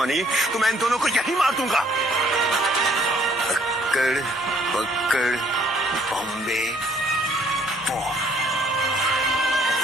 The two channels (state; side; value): normal; both; correlation 0.62